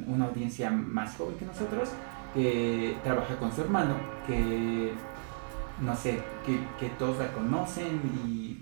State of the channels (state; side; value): silent; left; 56 dB below the other